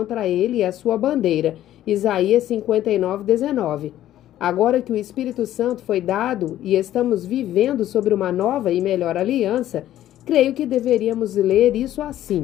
ele e a sua bandeira. Isaías 59:19. Agora que o Espírito Santo foi dado e estamos vivendo sobre uma nova e melhor aliança, creio que deveríamos ler isso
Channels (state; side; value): quieter; right; 12.8 dB